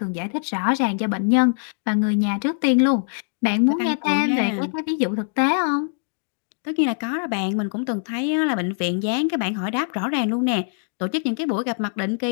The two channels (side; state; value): right; silent; digital silence